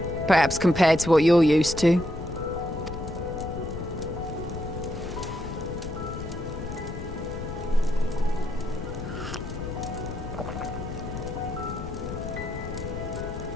Perhaps compared to what you're used to.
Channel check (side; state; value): left; noise; rumble, 8 dB below the sound